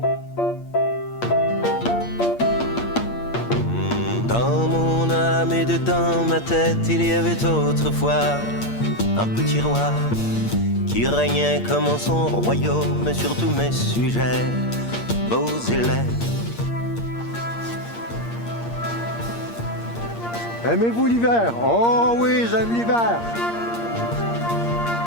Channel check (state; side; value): late; right; 8.6 ms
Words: Dans mon âme et dans ma tête, il y avait autrefois un petit roi qui régnait comme en son royaume sur tous mes sujets, beaux et laids. Aimez-vous l'hiver? Oh oui, j'aime l'hiver!